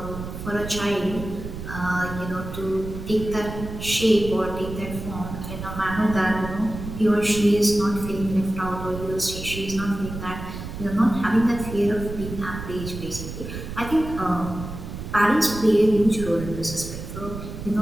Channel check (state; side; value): noise; right; rumble, 9 dB below the sound